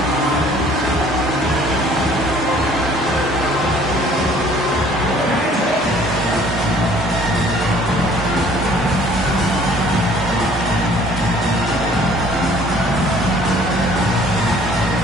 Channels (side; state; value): both; normal; correlation 0.55